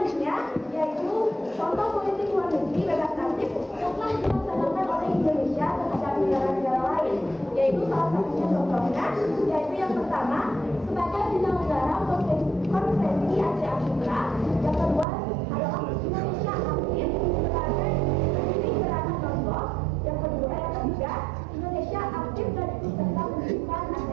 yaitu contoh politik luar negeri bebas aktif yang telah dilaksanakan oleh Indonesia terhadap negara-negara lain, yaitu salah satunya contohnya yaitu yang pertama sebagai penyelenggara konferensi Asia Afrika, yang kedua adalah Indonesia aktif sebagai pendiri gerakan Lombok, yang ketiga Indonesia aktif dan ikut serta mendirikan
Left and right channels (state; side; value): drops out; left; at 15.1 s